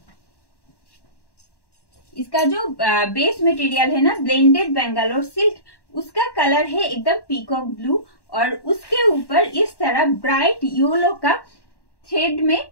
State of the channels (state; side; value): late; right; 1.1 ms